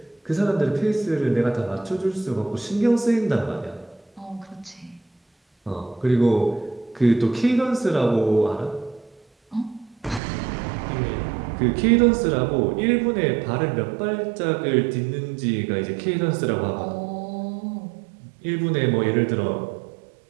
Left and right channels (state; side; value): drops out; left; at 10.2 s